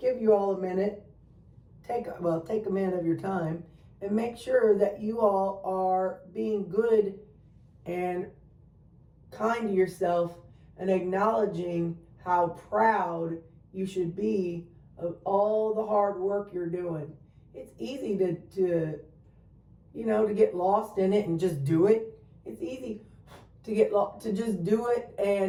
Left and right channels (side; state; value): both; identical; correlation 1.00